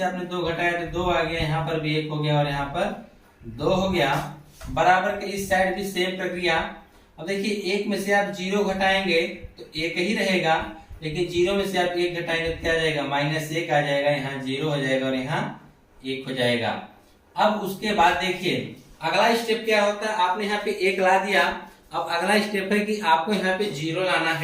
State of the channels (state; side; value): identical; both; correlation 1.00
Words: आपने 2 घटाया तो 2 आ गया, यहाँ पर भी 1 हो गया और यहाँ पर 2 हो गया। बराबर के इस साइड भी सेम प्रक्रिया। अब देखिए 1 में से आप 0 घटाएंगे तो 1 ही रहेगा, लेकिन 0 में से आप 1 घटाएंगे तो क्या आ जाएगा -1 आ जाएगा, यहाँ 0 हो जाएगा और यहाँ 1 हो जाएगा। अब उसके बाद देखिए अगला स्टेप क्या होता है, आपने यहाँ पे 1 ला दिया, अब अगला स्टेप है कि आपको यहाँ पे 0 लाना